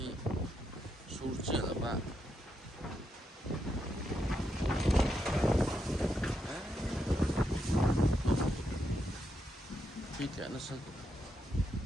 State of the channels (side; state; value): both; normal; correlation 0.82